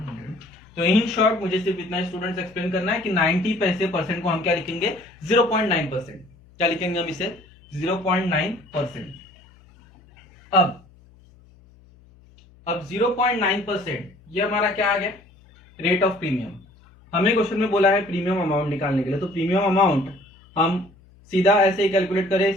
100। तो इन शॉर्ट मुझे सिर्फ इतना स्टूडेंट्स एक्सप्लेन करना है कि 90 पैसे परसेंट को हम क्या लिखेंगे 0.9%। क्या लिखेंगे हम इसे 0.9%। अब 0.9% ये हमारा क्या आ गया, रेट ऑफ प्रीमियम। हमें क्वेश्चन में बोला है प्रीमियम अमाउंट निकालने के लिए, तो प्रीमियम अमाउंट हम सीधा ऐसे ही कैलकुलेट करें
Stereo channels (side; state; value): left; noise; hum, 27 dB below the sound